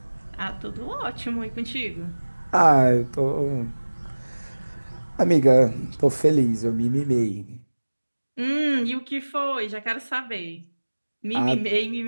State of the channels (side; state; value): both; inverted; correlation -1.00